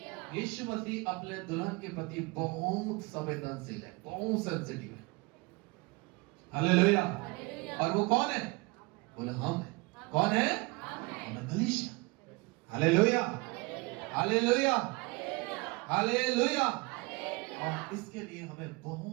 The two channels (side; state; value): left; quieter; 26.1 dB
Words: यीशु मसीह अपने दुल्हन के प्रति बहुत संवेदनशील है, बहुत सेंसिटिव है। हालेलुया। और वो कौन है? बोले हम है। कौन है? हम कलीसिया। Hallelujah, hallelujah, hallelujah. और इसके लिए हमें